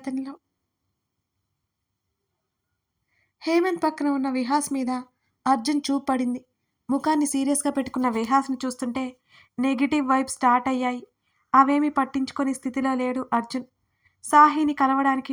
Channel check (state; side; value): identical; both; correlation 1.00